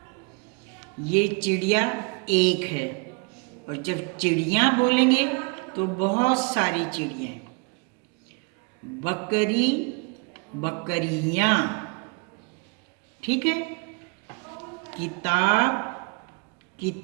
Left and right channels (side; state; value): left; quieter; 31.8 dB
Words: ये चिड़िया एक है, और जब चिड़िया बोलेंगे तो बहुत सारी चिड़िया। बकरी बकरियां, ठीक है। किताब